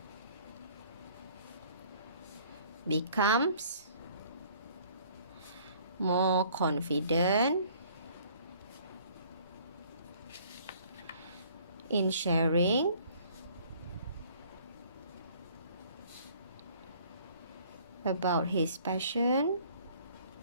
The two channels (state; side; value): inverted; both; correlation -0.56